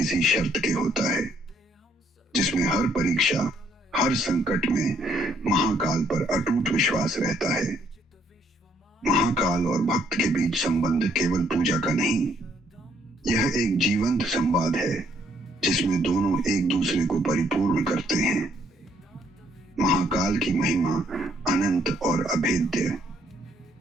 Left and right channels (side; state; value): both; normal; correlation 0.68